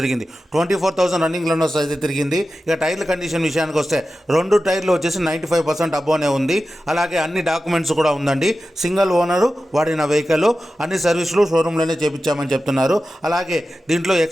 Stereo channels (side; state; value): both; normal; correlation 0.93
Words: 24,000 రన్నింగ్ లోనర్స్ అయితే తిరిగింది. ఇక టైర్ల కండిషన్ విషయానికి వస్తే 2 టైర్లు వచ్చేసి 95% అబ్బోనే ఉంది. అలాగే అన్ని డాక్యుమెంట్స్ కూడా ఉందండి. సింగిల్ ఓనరు వాడిన వెహికల్, అన్ని సర్వీసులు షోరూంలోనే చేపించామని చెప్తున్నారు. అలాగే దీంట్లో